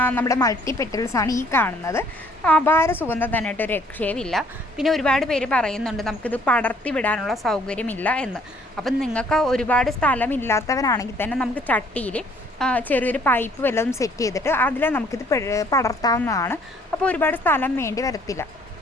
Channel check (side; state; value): both; normal; correlation 0.61